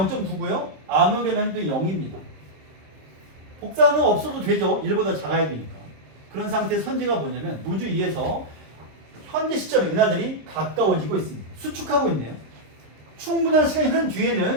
암흑의 밀도는 0입니다. 복사는 없어도 되죠. 1보다 작아야 되니까. 그런 상태의 선지가 뭐냐면 우주 2에서 현재 시점에 은하들이 가까워지고 있습니다. 수축하고 있네요. 충분한 시간이 흐른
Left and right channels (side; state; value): left; late; 26 ms